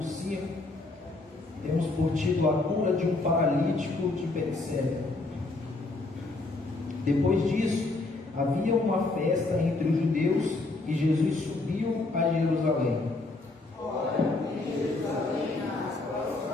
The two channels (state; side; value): quieter; right; 3.2 dB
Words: 5. Temos por título a cura de um paralítico de Betsaida. Depois disso, havia uma festa entre os judeus e Jesus subiu a Jerusalém.